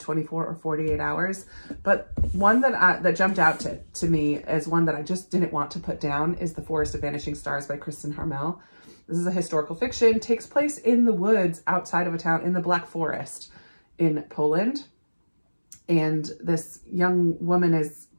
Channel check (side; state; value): both; inverted; correlation -1.00